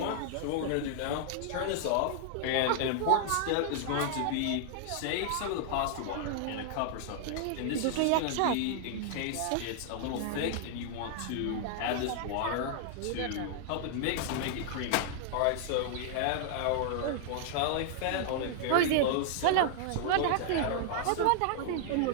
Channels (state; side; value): different; both; correlation -0.01